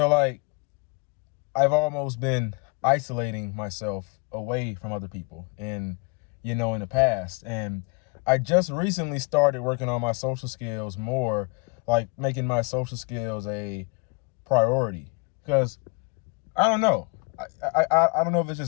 like I've almost been isolating myself away from other people in the past. And I just recently started working on my social skills more, like making my social skills a priority. Because I don't know. I don't know if it's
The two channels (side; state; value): right; quieter; 30.1 dB